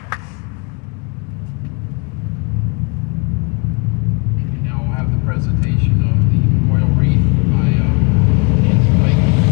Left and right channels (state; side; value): quieter; right; 31.7 dB